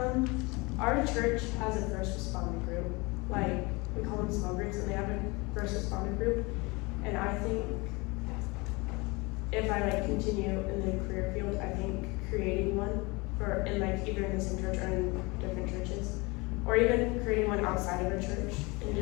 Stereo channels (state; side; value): quieter; right; 25.9 dB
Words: Our church has a first responder group. Like, we call them small groups, and they have a first responder group. And I think if I continue in the career field, I think creating one in either in the same church or in different churches, or even creating one outside of a church, and